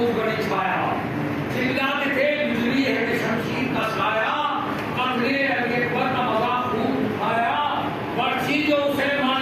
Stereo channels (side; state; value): both; identical; correlation 1.00